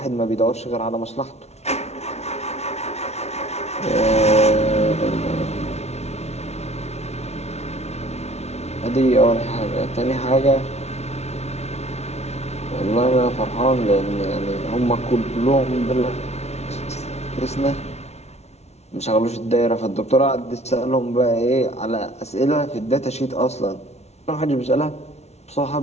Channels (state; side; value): late; right; 0.31 ms